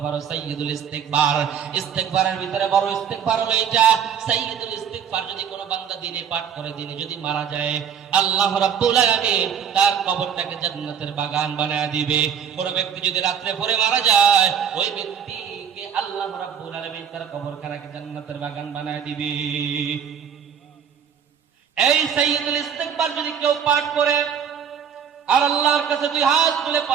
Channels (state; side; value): quieter; left; 7.8 dB